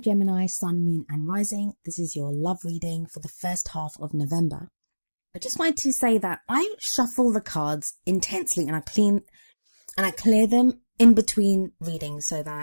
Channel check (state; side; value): inverted; both; correlation -1.00